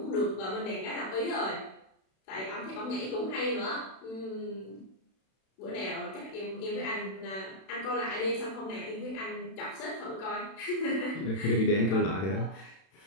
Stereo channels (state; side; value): late; right; 31 ms